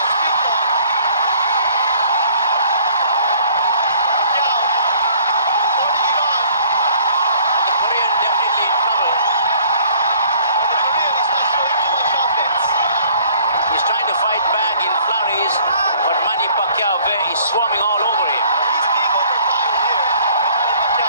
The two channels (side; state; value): both; inverted; correlation -0.56